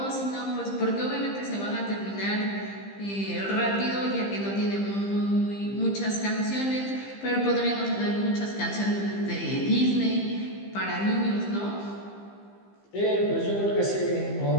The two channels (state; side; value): late; right; 15 ms